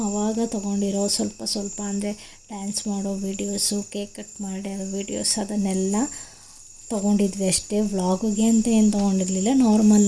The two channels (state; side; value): identical; both; correlation 1.00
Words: ಆವಾಗ ತೊಗೊಂಡಿರೋ ಸ್ವಲ್ಪ ಅಂದರೆ ಡ್ಯಾನ್ಸ್ ಮಾಡೋ ವೀಡಿಯೋಸು, ಕೇಕ್ ಕಟ್ ಮಾಡೋ ವೀಡಿಯೋಸ್ ಅದನ್ನೆಲ್ಲ ತೊಗೊಂಡಿದ್ವಿ ಅಷ್ಟೇ. ವ್ಲಾಗಿಗೆ ಅಂತ ಏನು ತೊಗೊಂಡಿರಲಿಲ್ಲ,